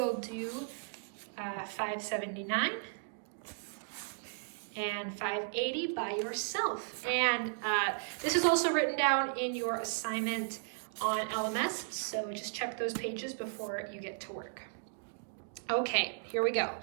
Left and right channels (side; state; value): left; silent; digital silence